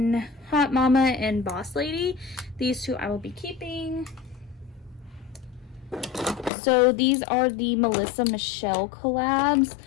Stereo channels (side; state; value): right; drops out; at 6.5 s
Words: Hot Mama and Boss Lady. These two I will be keeping. So these are the Melissa Michelle collabs.